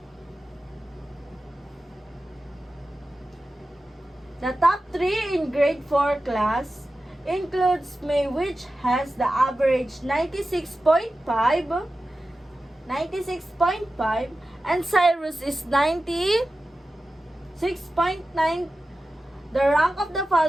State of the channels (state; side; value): normal; both; correlation 0.94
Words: The top 3 in grade 4 class includes May, which has the average 96.5, and Cyrus is 96.9. The rank of the